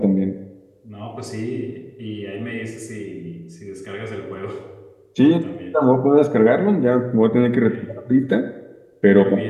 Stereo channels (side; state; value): both; identical; correlation 1.00